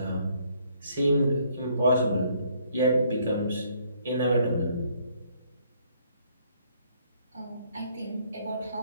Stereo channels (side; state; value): both; inverted; correlation -0.66